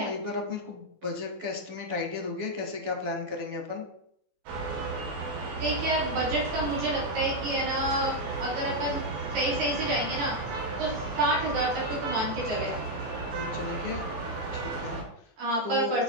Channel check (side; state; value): left; late; 13 ms